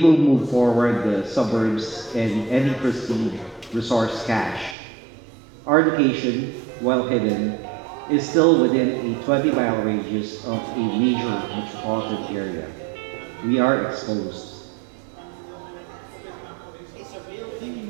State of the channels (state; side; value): drops out; left; at 4.8 s